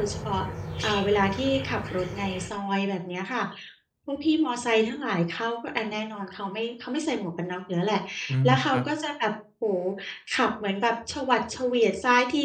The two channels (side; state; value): both; identical; correlation 1.00